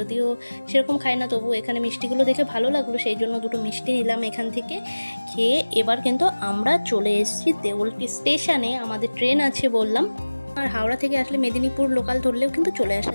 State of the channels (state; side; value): inverted; both; correlation -1.00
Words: সেরকম খাই না, তবু এখানে মিষ্টিগুলো দেখে ভালো লাগলো, সেই জন্য 2টো মিষ্টি নিলাম এখান থেকে। খেয়ে এবার কিন্তু আমরা চলে এসেছি দেউলটি স্টেশনে। আমাদের ট্রেন আছে বললাম, আর হাওড়া থেকে আসলে মেদিনীপুর লোকাল ধরলেও কিন্তু চলে আসা